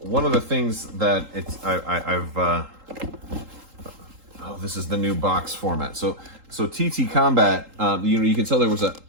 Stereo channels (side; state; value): left; late; 3.8 ms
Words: of the things that this is the new box format. So TT Combat, you can tell there was